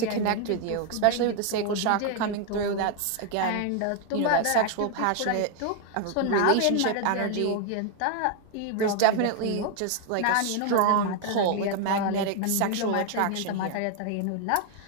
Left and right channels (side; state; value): both; different; correlation 0.01